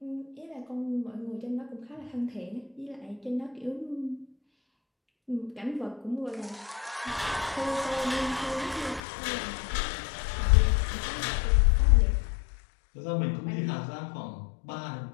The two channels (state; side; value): drops out; right; at 9.0 s